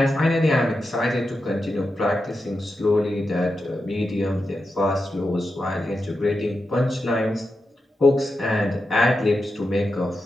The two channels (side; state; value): both; normal; correlation 0.88